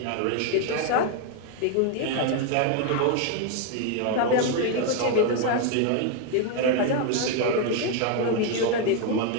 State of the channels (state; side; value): different; both; correlation 0.01